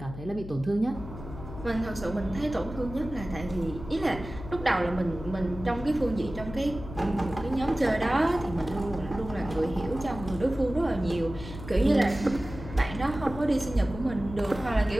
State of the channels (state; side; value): noise; left; hum, 11 dB below the sound